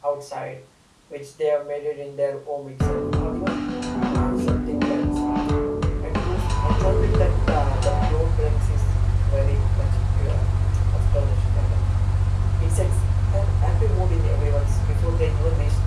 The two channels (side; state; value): both; identical; correlation 1.00